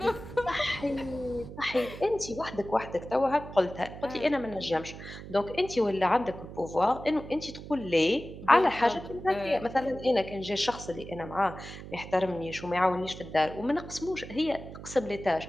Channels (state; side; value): noise; right; hum, 12 dB below the sound